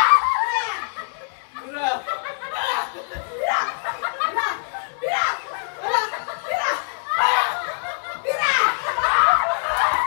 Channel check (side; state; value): right; silent; 63 dB below the other